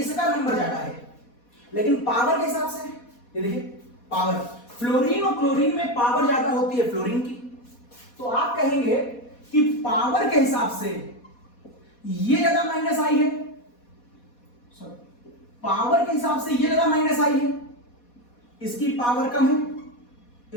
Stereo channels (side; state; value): right; late; 4.2 ms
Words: नंबर ज्यादा है, लेकिन पावर के हिसाब से ये देखिए पावर, फ्लोरीन और क्लोरीन में पावर ज्यादा होती है फ्लोरीन की, तो आप कहेंगे कि पावर के हिसाब से ये ज्यादा माइनस आई है, पावर के हिसाब से ये ज्यादा माइनस आई है, इसकी पावर कम है,